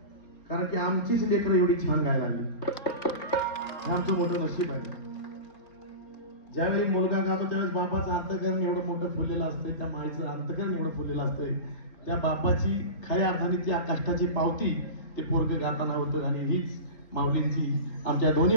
कारण की आमचीच लेकरं एवढी छान गायला लागली. आमचं मोठं नशीब आहे. ज्यावेळी मुलगा गातो त्यावेळेस बापाचं अंतकरण एवढं मोठं फुललेलं असतंय, त्या माईचं अंतकरण एवढं फुललेलं असतंय. त्या बापाची खऱ्या अर्थाने त्या कष्टाची पावती ते पोरगं गाताना होतं. आणि हीच माऊलींची आमच्या दोन्ही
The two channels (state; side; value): late; right; 3.8 ms